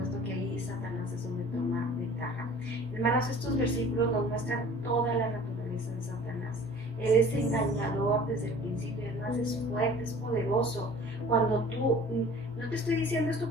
que ahí Satanás es donde toma ventaja. Hermanos, estos versículos nos muestran toda la naturaleza de Satanás. Él es engañador desde el principio, además es fuerte, es poderoso. Cuando tú, no te estoy diciendo esto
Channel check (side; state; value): both; normal; correlation 0.47